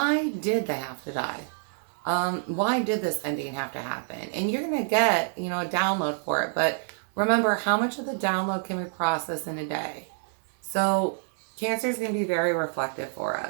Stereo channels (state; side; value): silent; left; digital silence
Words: did they have to die? Why did this ending have to happen? And you're going to get, a download for it. But remember, how much of the download can we process in a day? So Cancer is going to be very reflective for